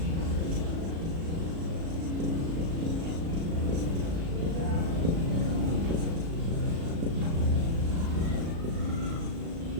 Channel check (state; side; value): late; left; 36 ms